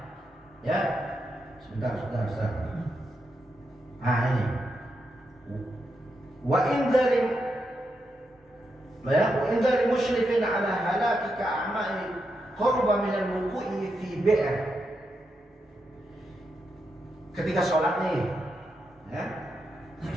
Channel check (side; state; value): both; normal; correlation 0.84